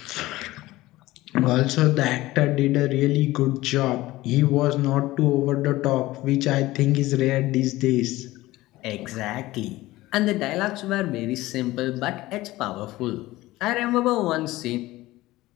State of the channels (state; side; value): quieter; right; 17.9 dB